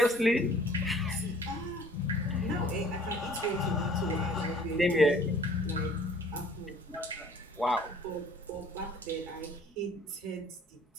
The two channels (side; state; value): both; normal; correlation 0.53